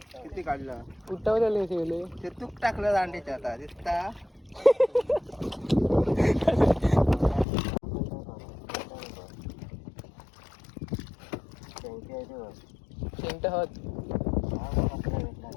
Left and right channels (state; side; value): drops out; right; at 7.5 s